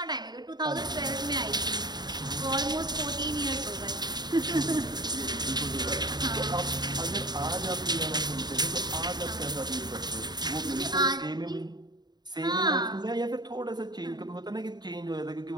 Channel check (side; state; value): left; late; 0.20 ms